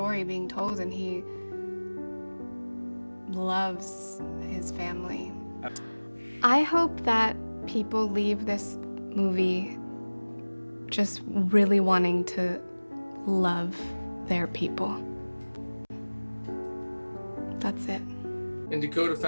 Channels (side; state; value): both; inverted; correlation -1.00